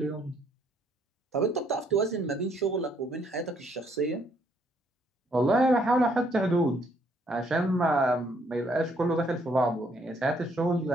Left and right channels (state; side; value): normal; both; correlation 0.68